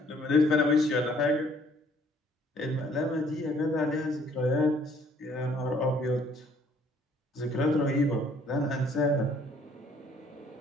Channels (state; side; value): normal; both; correlation 0.61